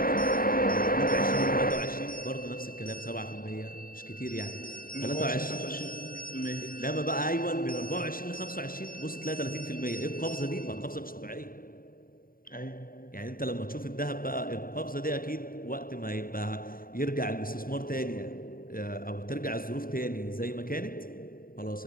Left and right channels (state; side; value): late; right; 0.41 ms